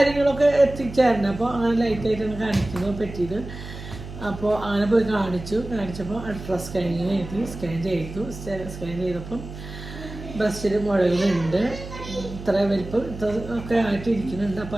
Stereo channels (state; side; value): noise; right; hum, 12 dB below the sound